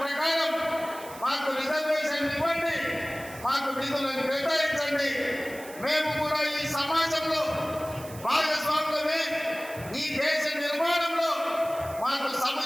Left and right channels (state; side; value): noise; right; hiss, 17 dB below the sound